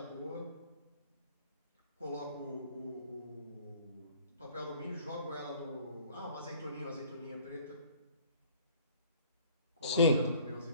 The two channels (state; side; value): inverted; both; correlation -0.53